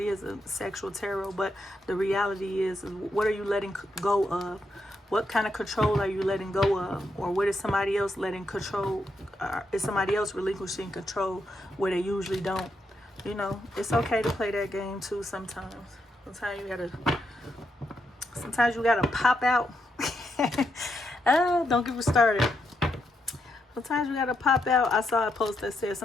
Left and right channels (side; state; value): both; normal; correlation 0.81